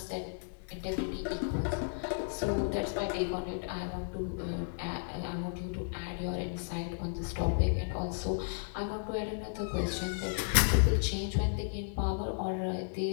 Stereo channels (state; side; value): silent; right; digital silence